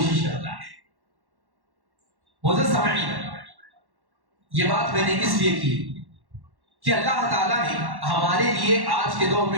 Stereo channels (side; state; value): left; late; 1.1 ms